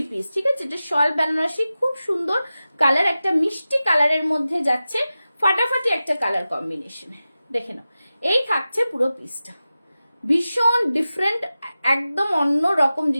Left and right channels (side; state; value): both; inverted; correlation -0.94